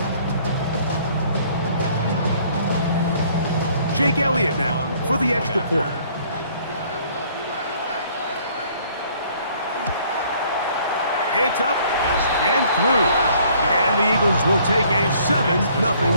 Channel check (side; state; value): both; inverted; correlation -0.60